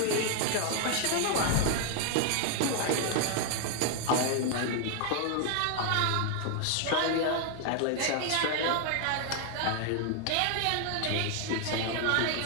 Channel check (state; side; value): different; both; correlation 0.00